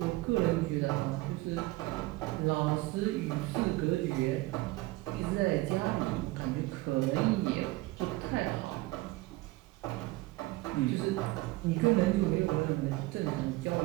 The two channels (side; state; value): left; quieter; 20.1 dB